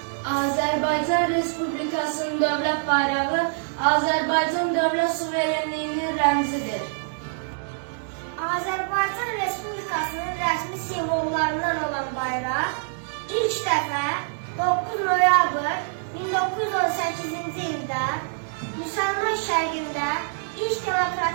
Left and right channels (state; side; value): silent; left; 59 dB below the other